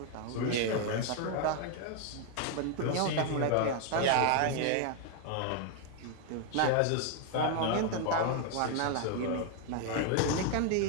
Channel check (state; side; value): different; both; correlation 0.00